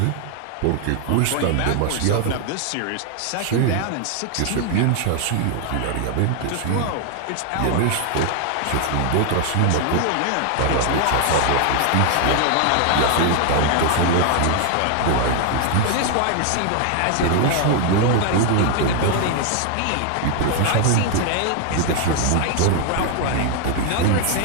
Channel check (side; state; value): both; different; correlation 0.00